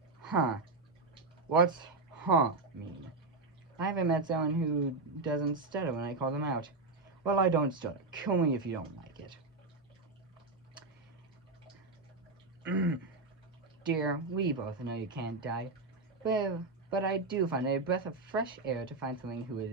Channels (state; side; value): quieter; left; 3.6 dB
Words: Huh. What's huh mean? I haven't met someone who doesn't stutter when I call them out. Well, I don't stutter. Kill me if you don't like it. Dear, we both know you can't die. But I do find it a breath of fresh air to find someone